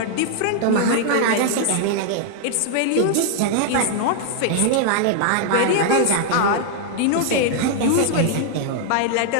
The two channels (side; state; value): both; different; correlation -0.01